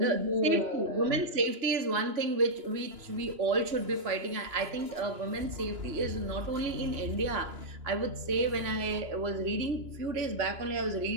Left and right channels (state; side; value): late; left; 2.9 ms